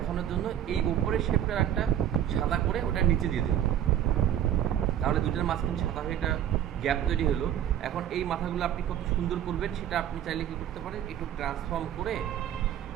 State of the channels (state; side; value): quieter; left; 10.6 dB